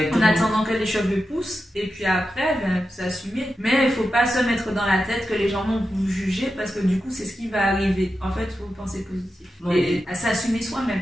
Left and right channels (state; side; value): normal; both; correlation 0.90